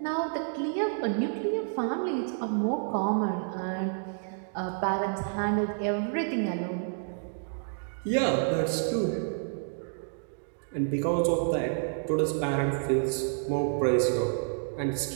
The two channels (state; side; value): silent; left; digital silence